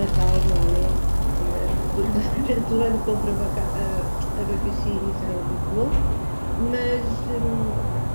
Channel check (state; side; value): inverted; both; correlation -1.00